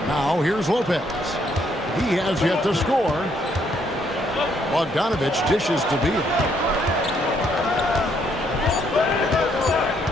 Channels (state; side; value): normal; both; correlation 0.70